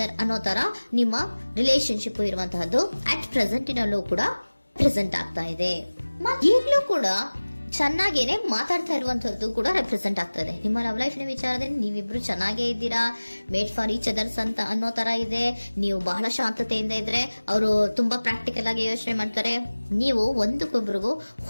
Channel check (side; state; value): both; inverted; correlation -1.00